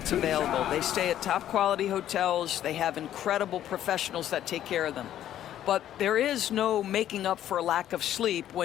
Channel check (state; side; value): quieter; right; 11.6 dB